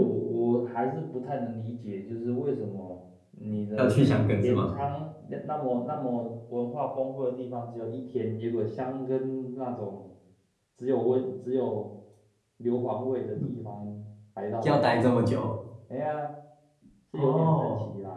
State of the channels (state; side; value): identical; both; correlation 1.00